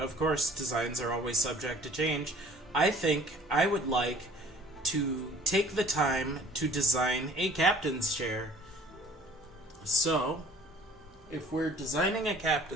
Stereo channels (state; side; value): normal; both; correlation 0.52